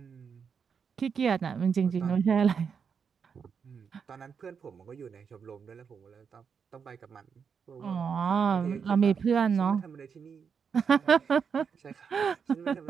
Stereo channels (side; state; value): left; quieter; 6.4 dB